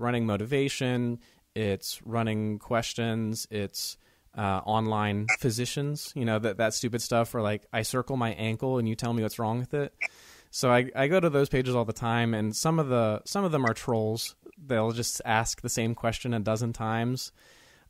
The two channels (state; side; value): identical; both; correlation 1.00